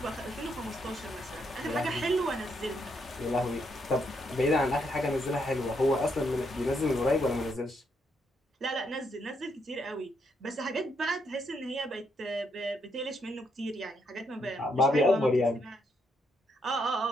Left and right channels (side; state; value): both; normal; correlation 0.76